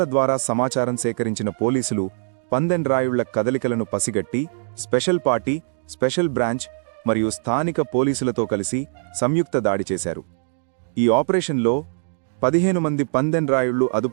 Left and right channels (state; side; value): silent; left; digital silence